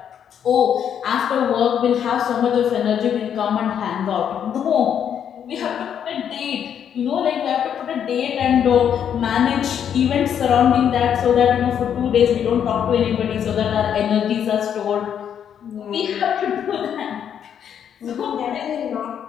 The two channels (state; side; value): quieter; right; 8.7 dB